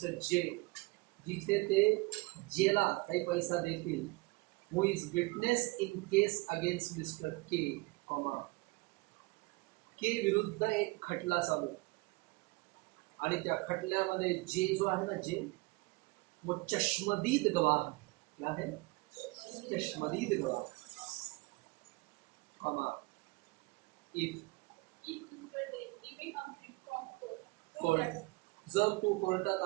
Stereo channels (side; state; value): left; quieter; 24.6 dB